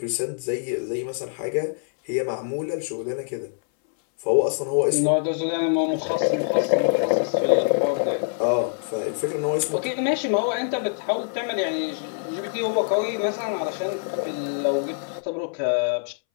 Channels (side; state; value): right; silent; 62 dB below the other